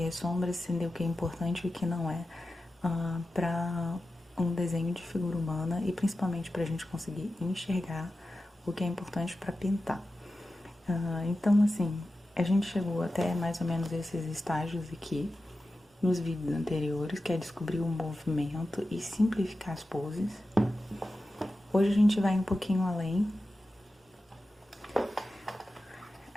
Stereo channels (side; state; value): both; normal; correlation 0.93